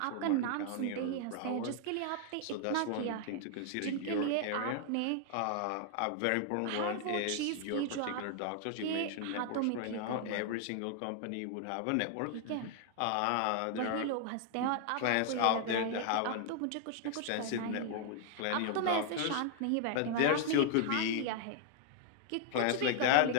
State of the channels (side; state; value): both; different; correlation 0.00